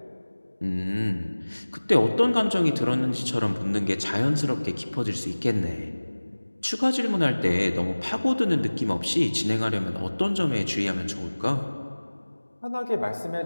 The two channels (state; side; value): inverted; both; correlation -1.00